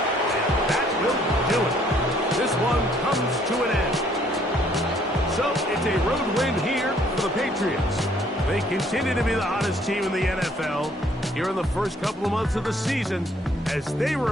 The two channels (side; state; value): both; normal; correlation 0.64